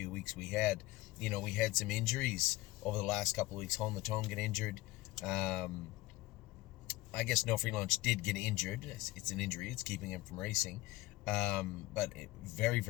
weeks we had. We had some injuries over the last couple of weeks. Home the Tone get injured. I guess No Free Lunch did get injured. It's an injury. It's keeping him from racing. But very,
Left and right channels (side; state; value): right; quieter; 18.7 dB